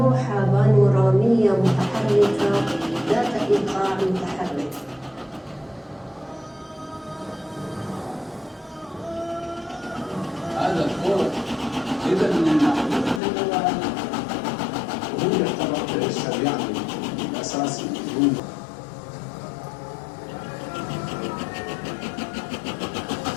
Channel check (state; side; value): drops out; right; at 13.2 s